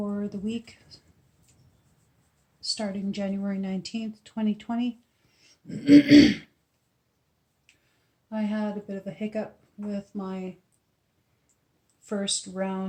the week starting January 19th, 2020. I had a bit of a hiccup with my first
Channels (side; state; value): both; identical; correlation 1.00